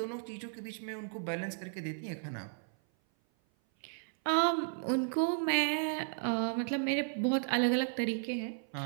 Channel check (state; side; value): silent; left; 55 dB below the other